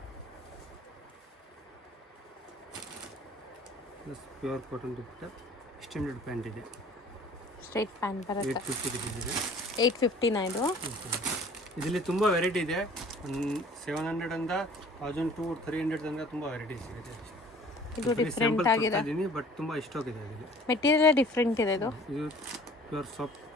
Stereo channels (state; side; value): normal; both; correlation 0.50